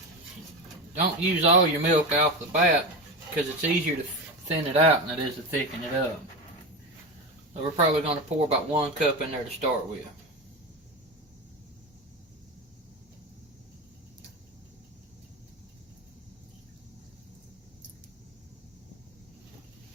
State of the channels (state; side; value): normal; both; correlation 0.21